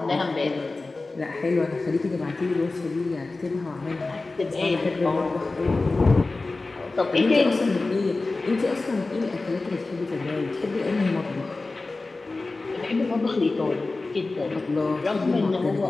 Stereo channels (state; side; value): quieter; right; 3.4 dB